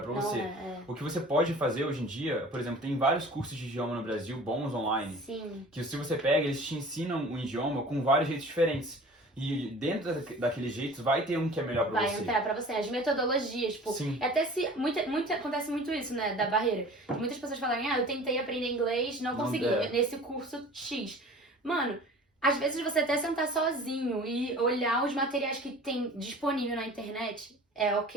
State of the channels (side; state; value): both; normal; correlation 0.43